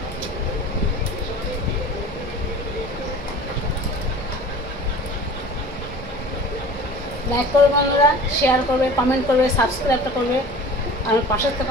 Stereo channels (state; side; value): normal; both; correlation 0.41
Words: লাইক করবে বন্ধুরা শেয়ার করবে কমেন্ট করবে সাবস্ক্রাইবটা করবে আমার পাশের থেকে